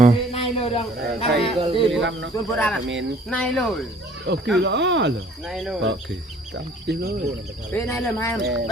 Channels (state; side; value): normal; both; correlation 0.54